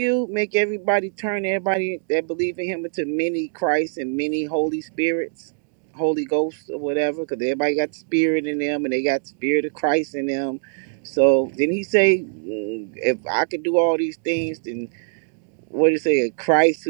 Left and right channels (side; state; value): left; silent; digital silence